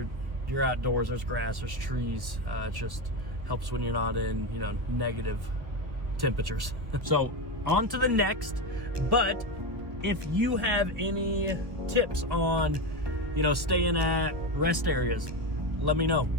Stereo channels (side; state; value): left; late; 1.4 ms